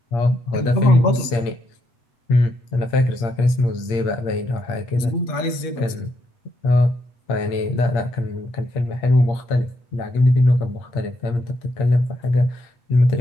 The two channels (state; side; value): late; right; 8.5 ms